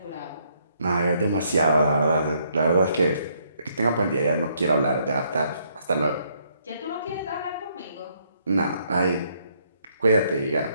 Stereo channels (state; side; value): inverted; both; correlation -0.71